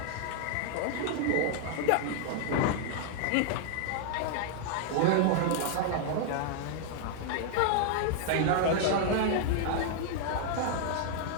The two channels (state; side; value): different; both; correlation 0.00